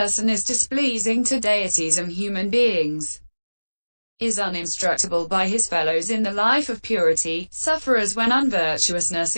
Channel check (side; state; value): both; inverted; correlation -1.00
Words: is displeasing to deities and human beings, is uninstructable by his fellows in the life of purity, suffers when unvirtuousness